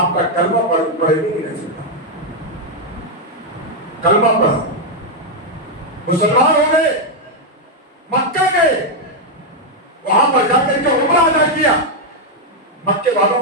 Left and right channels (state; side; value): normal; both; correlation 0.00